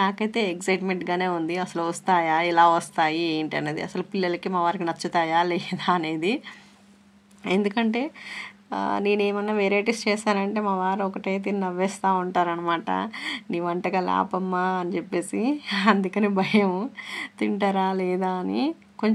ఎక్సైట్మెంట్గానే ఉంది, అసలు వస్తాయా, ఎలా వస్తాయి ఏంటి అనేది, అసలు పిల్లలకి మా వారికి నచ్చుతాయా లేదా అనేది. ఎందుకంటే నేనేమన్నా వెరైటీస్ చేశానంటే మా వారు ఒకటే తిని నవ్వేస్తూ ఉంటారనమాట, నీ వంటకాలు ఆపమ్మా అని చెప్పేసి. అందుకని భయం తింటారా లేదా అని.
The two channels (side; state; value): both; identical; correlation 1.00